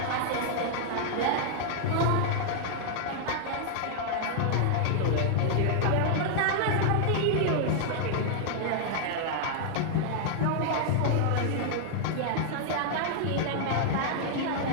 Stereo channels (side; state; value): both; different; correlation -0.01